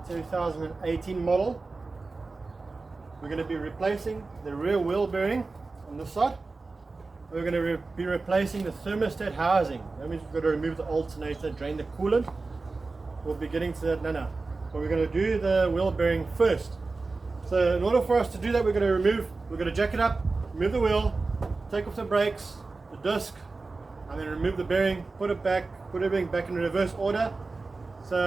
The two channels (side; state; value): left; quieter; 3.7 dB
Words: 2018 model. We're going to be replacing the rear wheel bearing on this side. We're going to be replacing the thermostat housing. That means we've got to remove the alternator, drain the coolant. We'll be getting to that now. But we're going to do the wheel bearing first. So in order for us to do that, we're going to jack it up, remove the wheel, take off the brakes, the disc, and then remove the bearing, put everything back in reverse order.